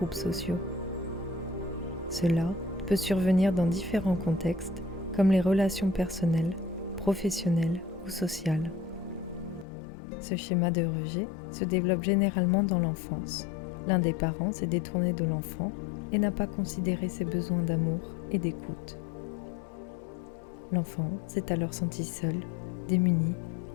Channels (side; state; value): right; drops out; at 9.7 s